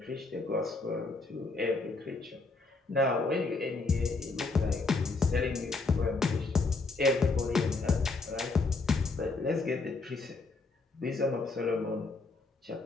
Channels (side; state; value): right; quieter; 3.7 dB